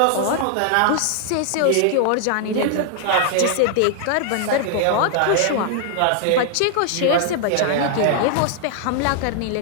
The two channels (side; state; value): both; different; correlation 0.00